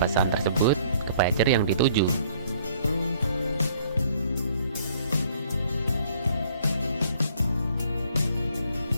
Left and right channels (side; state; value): both; inverted; correlation -0.61